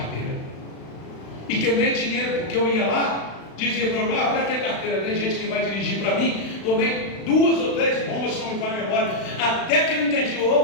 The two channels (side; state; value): right; late; 36 ms